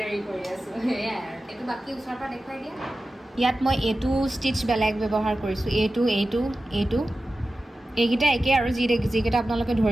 কৰি আছোঁ সেয়াই আৰু এইটো বাকী ওচৰৰ পৰা দেখুৱাই দিয়া ইয়াত মই এইটো ষ্টিচ বেলেগ ব্যৱহাৰ কৰিছোঁ এইটো এইকেইটা একেই আৰু যিকেইটা আপোনালোকে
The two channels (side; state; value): both; normal; correlation 0.94